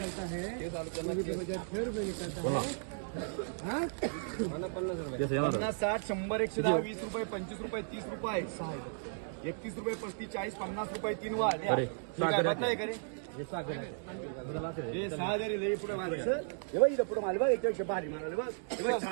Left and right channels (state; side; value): silent; left; digital silence